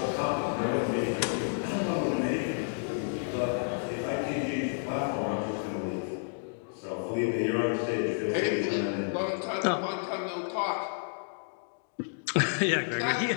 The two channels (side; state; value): right; silent; digital silence